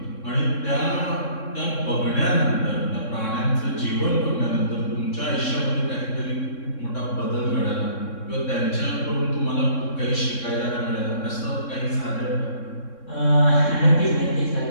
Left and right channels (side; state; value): right; late; 3.6 ms